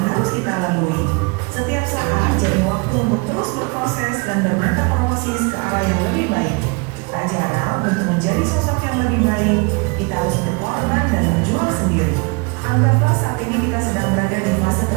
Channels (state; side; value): quieter; left; 30.2 dB